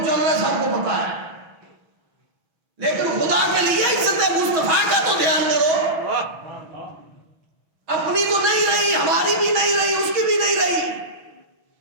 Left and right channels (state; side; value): late; left; 6.3 ms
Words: چل رہا ہے سب کو پتا ہے، لیکن خدا کے لیے عزت مصطفیٰ کا تو دھیان کرو. اپنی تو نہیں رہی، ہماری بھی نہیں رہی، اس کی بھی نہیں رہی،